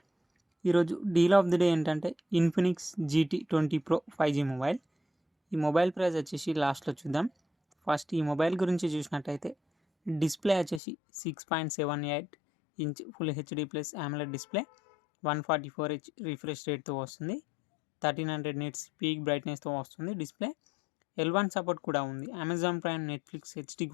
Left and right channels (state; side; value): drops out; right; at 10.8 s